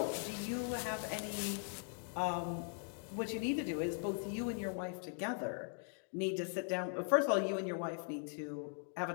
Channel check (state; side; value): silent; right; 51 dB below the other